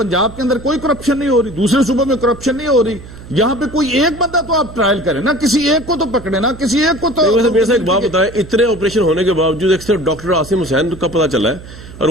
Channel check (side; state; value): right; noise; hum, 16 dB below the sound